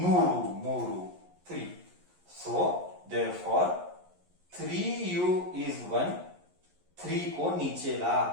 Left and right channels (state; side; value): late; left; 11 ms